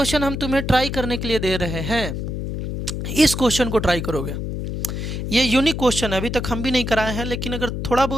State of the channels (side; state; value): left; noise; hum, 4 dB below the sound